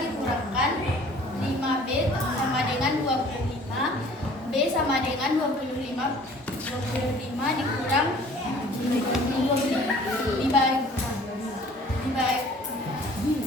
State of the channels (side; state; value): both; normal; correlation 0.51